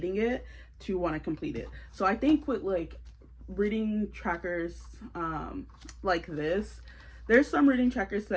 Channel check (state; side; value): identical; both; correlation 1.00